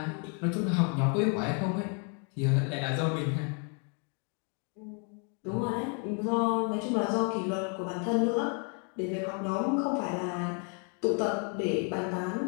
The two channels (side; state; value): right; quieter; 39.4 dB